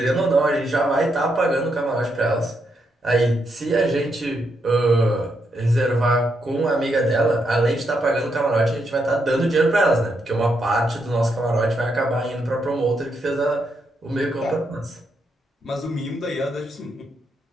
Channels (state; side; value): normal; both; correlation 0.80